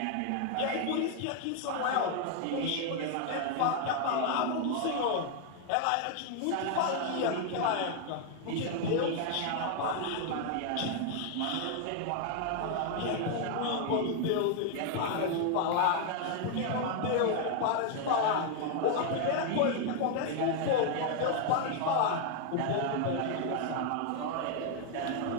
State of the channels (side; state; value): both; different; correlation 0.00